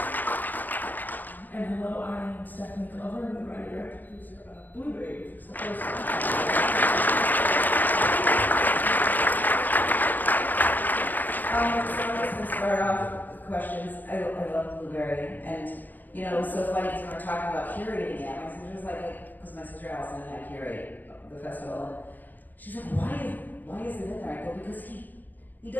And hello, I'm Stephanie Glover, the writer and director producer of Blueberry, which is the first one. So I'm just going to start off with questions. I love Blueberry, and you know, it was so funny because when we were talking about curating it, my sister was like, because my sister Allison and I curate the festival, and she's like, why is it in there? I go, because he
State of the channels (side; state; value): right; late; 0.085 ms